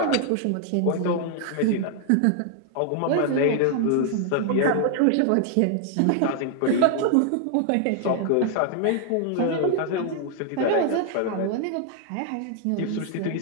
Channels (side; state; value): both; different; correlation 0.00